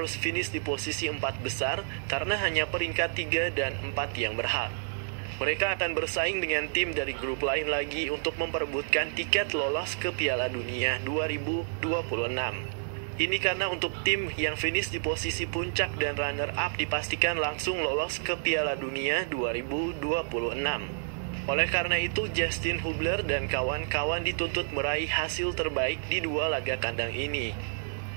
finish di posisi 4 besar karena hanya peringkat 3 dan 4 yang berhak. Mereka akan bersaing dengan tim dari grup lain lagi untuk memperebutkan tiket lolos ke Piala Dunia 2026. Ini karena untuk tim yang finish di posisi puncak dan runner-up dipastikan langsung lolos ke Piala Dunia 2026. Oleh karena itu, Justin Hubler dan kawan-kawan dituntut meraih hasil terbaik di 2 laga kandang ini.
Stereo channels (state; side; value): silent; left; digital silence